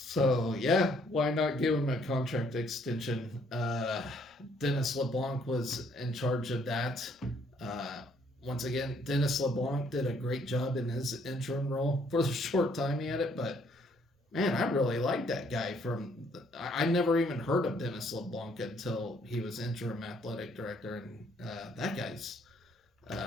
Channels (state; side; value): normal; both; correlation 0.66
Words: yeah, why not give him a contract extension? Dennis LeBlanc was in charge of that. Once again, Dennis LeBlanc did a great job in his interim role for the short time he had it, but man, I really like that guy. I never even heard of Dennis LeBlanc until he was interim athletic director, and that guy's